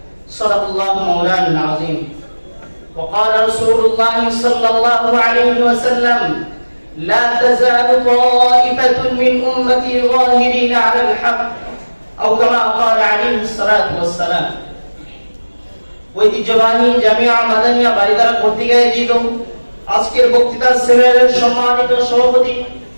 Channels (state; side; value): inverted; both; correlation -1.00